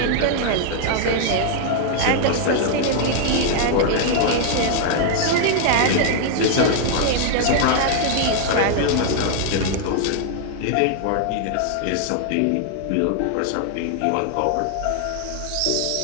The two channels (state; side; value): different; both; correlation 0.00